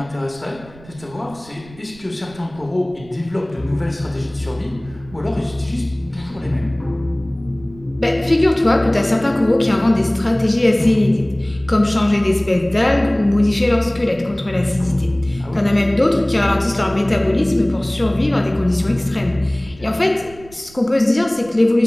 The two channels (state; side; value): noise; right; rumble, 22 dB below the sound